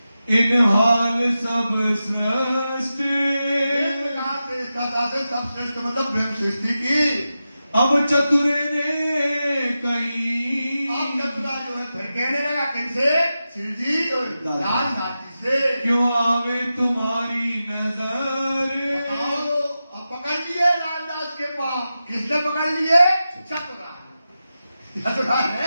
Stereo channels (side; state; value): both; inverted; correlation -0.92